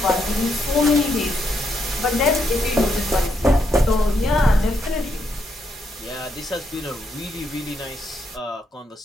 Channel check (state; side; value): normal; both; correlation 0.78